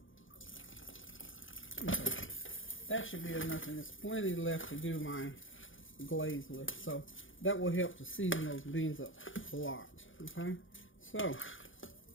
Okay. That should be enough, and there's plenty left to do my glaze with, so that will help to season those beans up a lot. Okay, so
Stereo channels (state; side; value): late; right; 0.57 ms